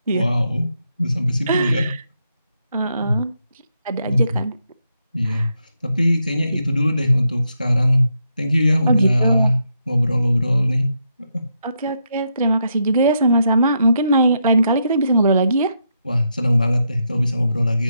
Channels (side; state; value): both; inverted; correlation -0.80